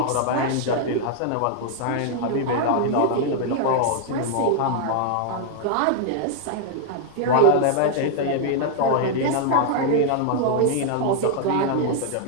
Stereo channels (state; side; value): different; both; correlation 0.00